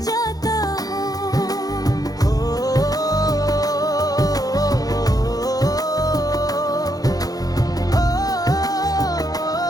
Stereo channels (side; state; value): right; late; 0.18 ms